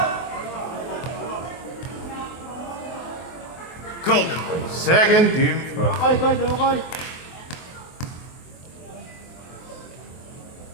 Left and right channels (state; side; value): late; right; 23 ms